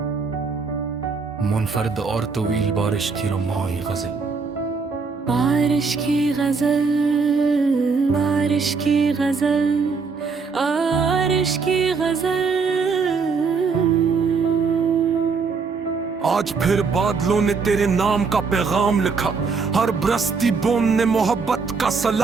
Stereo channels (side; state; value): left; quieter; 4.9 dB